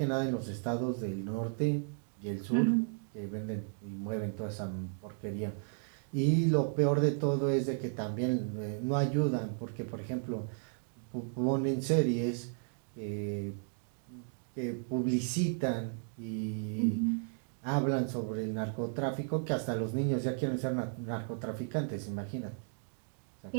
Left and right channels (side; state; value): left; silent; 55 dB below the other